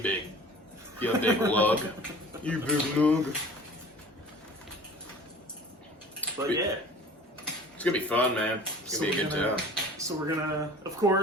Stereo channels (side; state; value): both; normal; correlation 0.43